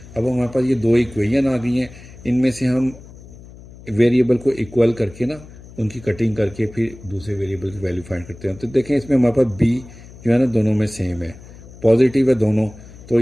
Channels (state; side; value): noise; left; hum, 19 dB below the sound